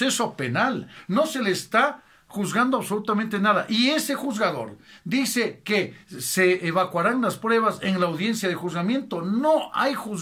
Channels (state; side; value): identical; both; correlation 1.00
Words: penal, no se le está juzgando absolutamente nada, y ese juzgador dice que se evacuarán las pruebas en la audiencia de juzgamiento. No hay